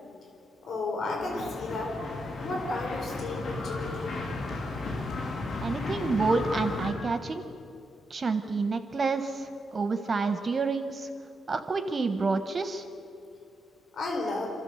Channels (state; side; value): normal; both; correlation 0.83